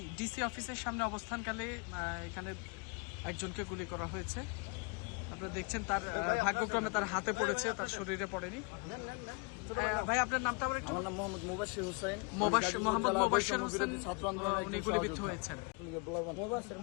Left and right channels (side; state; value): right; quieter; 32.5 dB